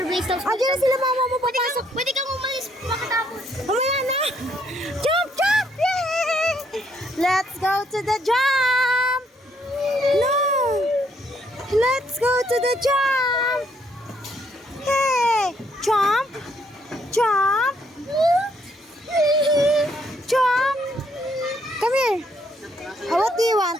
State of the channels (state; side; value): normal; both; correlation 0.70